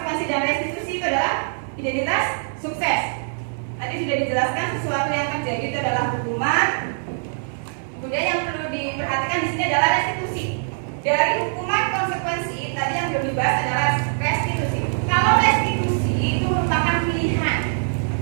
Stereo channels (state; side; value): silent; left; digital silence